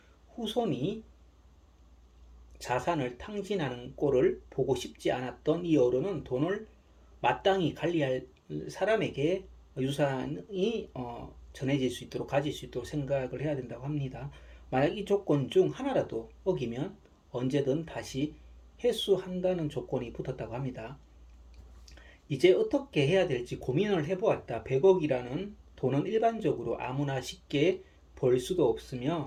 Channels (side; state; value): both; identical; correlation 1.00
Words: 후손이 자산을 탕진하는 꼴을 보고 싶지 않았던 이 어른은 돈을 마땅히 관리할 사람에게 유산이 전해질 수 있도록 가질 수 있도록 생각을 해야 된다고 합니다. 만약 이 조건 중 하나라도 어기면 언제든 다시 회수한다는 조건이 붙었다고 합니다. 이제 어떻게 해야 될지 고민을 해보았다. 100억이라는 돈은 일반적으로 아무나 쉽게 벌 수도